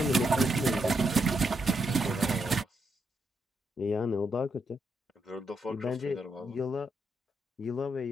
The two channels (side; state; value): both; normal; correlation 0.80